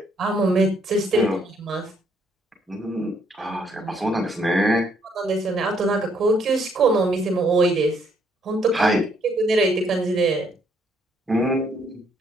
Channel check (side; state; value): both; normal; correlation 0.69